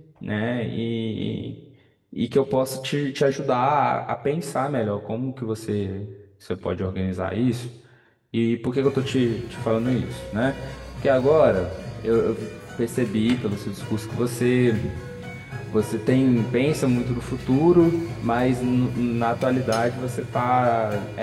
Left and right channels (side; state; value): both; identical; correlation 1.00